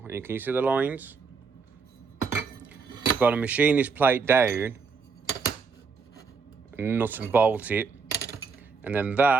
And can you see the lines? I've got to machine this plate down, nut and bolt it, and then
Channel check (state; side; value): quieter; left; 5.1 dB